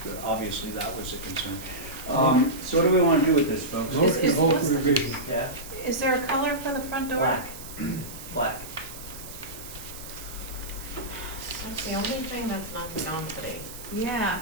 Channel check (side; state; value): right; noise; hiss, 13 dB below the sound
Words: Obviously, that was a concern. So what do we want to do with this, folks? Motion to hold for revision. Yeah, Is there a color for the front door? black. Black. That's the only thing that's not density. Yeah,